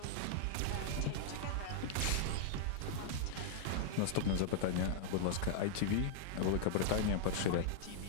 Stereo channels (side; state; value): both; different; correlation -0.01